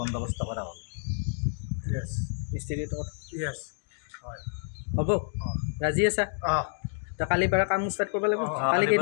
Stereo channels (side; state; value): right; silent; digital silence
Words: কৰা হ'ল। মিস্ত্ৰী টকা য়েছ হয় হ'ব ৰাজি আছা? অঁ তো কালিৰ পৰা কাম ষ্টাৰ্ট কৰিব লাগিব। কালি কেই